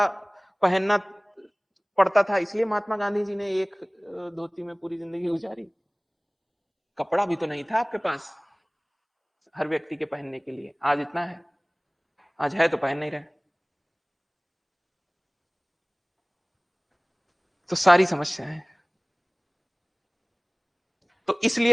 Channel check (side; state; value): both; identical; correlation 1.00